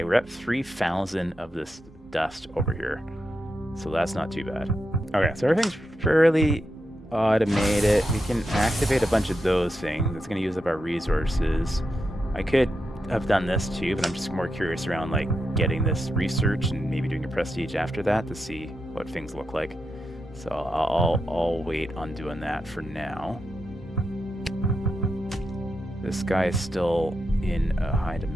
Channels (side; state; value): both; normal; correlation 0.86